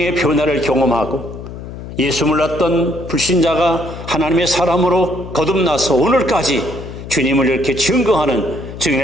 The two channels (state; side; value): noise; left; hum, 11 dB below the sound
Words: 변화를 경험하고 예수 몰랐던 불신자가 하나님의 사람으로 거듭나서 오늘까지 주님을 이렇게 증거하는